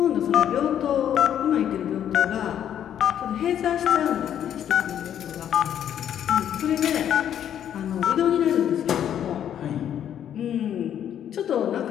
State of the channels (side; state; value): right; quieter; 9.9 dB